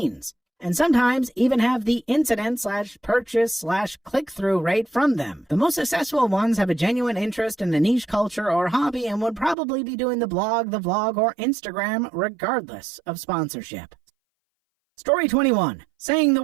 And sometimes even have the incident/purchase/click-through rate from them. The most successful ones have a genuine interest in a niche culture or hobby and would probably be doing the blog, the vlog, or Instagram regardless of sponsorship. Story 21. Saying the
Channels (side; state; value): left; drops out; at 9.6 s